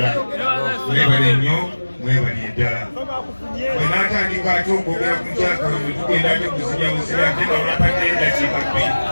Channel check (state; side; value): inverted; both; correlation -1.00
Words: mwebale nnyo mwebalire ddala bwe naatandika ate okwogera ku nkyakalo bwe tugenda ate kuzinya buzira ate nga bampate eddakiika bbiri